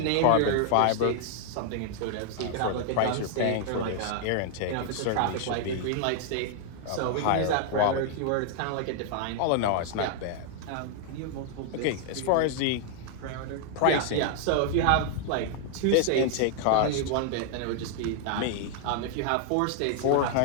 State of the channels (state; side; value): different; both; correlation 0.00